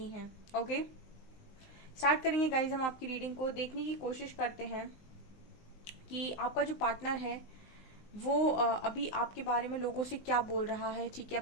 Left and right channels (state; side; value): late; right; 19 ms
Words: है। ओके, स्टार्ट करेंगे गाइज। हम आपकी रीडिंग को देखने की कोशिश करते हैं कि आपका जो पार्टनर है वो अभी आपके बारे में लोगों से क्या बोल रहा है। ठीक है,